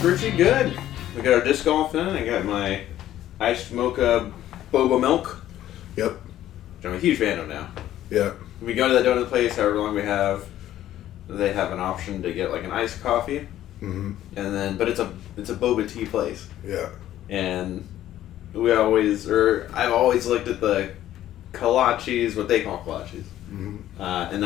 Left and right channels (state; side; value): quieter; right; 12.8 dB